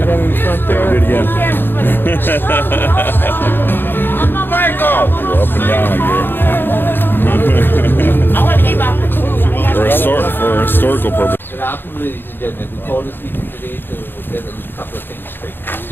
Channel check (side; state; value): right; late; 0.098 ms